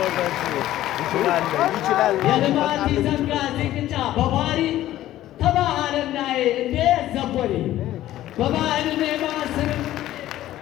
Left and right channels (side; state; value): right; quieter; 14.0 dB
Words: የልማት ዘንጋ ዚቅጫ በባሪ ተባህልና እንዴ ዘቦሪ በባህል